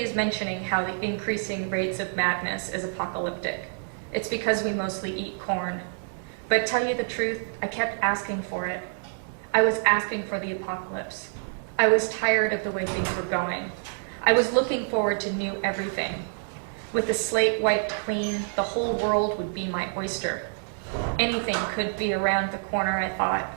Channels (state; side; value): silent; left; digital silence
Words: is mentioning how the increasing rates of madness is apocalyptic. It's because we mostly eat corn. But tell you the truth, I kept asking for it. I was asking for the apocalypse. I was tired of the way things were going. I was looking forward to new everything. With the slate wiped clean, the whole world would be my oyster. Anything could be around the corner, I